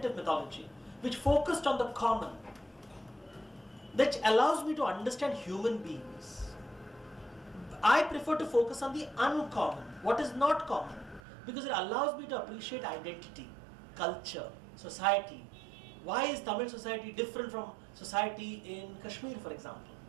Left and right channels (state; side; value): drops out; left; at 11.2 s